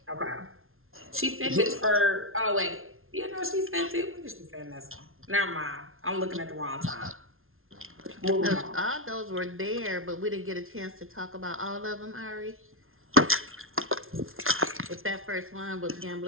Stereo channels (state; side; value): late; left; 0.61 ms